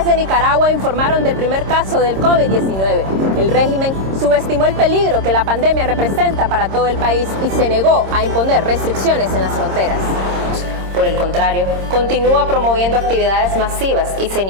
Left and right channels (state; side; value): late; left; 26 ms